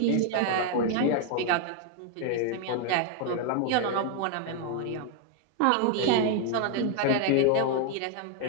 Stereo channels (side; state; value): both; different; correlation 0.00